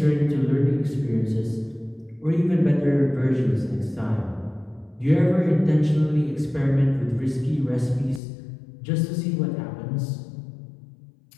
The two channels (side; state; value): right; drops out; at 8.2 s